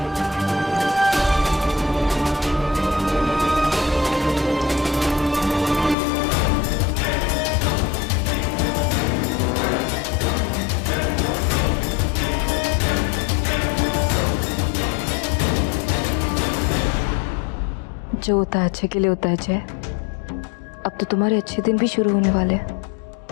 जो होता है अच्छे के लिए होता है जय। अब तो तुम्हारे अच्छे दिन भी शुरू होने वाले हैं।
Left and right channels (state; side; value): drops out; right; at 6.0 s